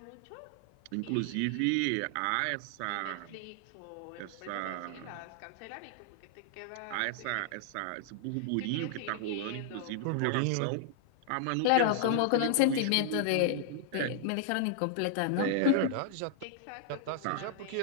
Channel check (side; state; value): both; different; correlation -0.01